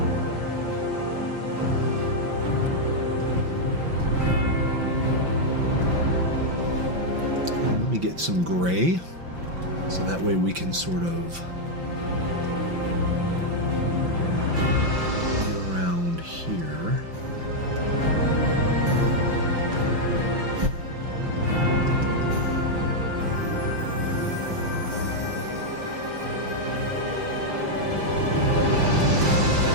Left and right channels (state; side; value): late; left; 5.8 ms